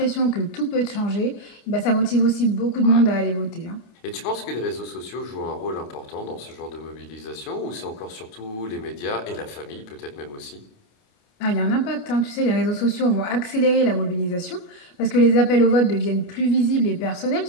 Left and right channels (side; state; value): right; late; 28 ms